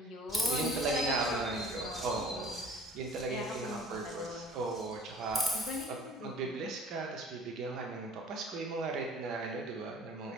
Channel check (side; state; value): both; normal; correlation 0.48